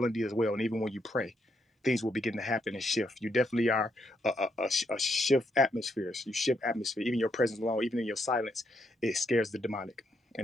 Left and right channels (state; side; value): normal; both; correlation 0.77